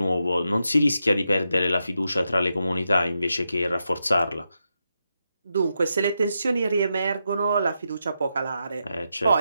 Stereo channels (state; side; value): inverted; both; correlation -0.85